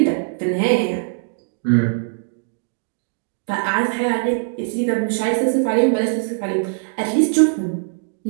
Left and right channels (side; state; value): left; silent; digital silence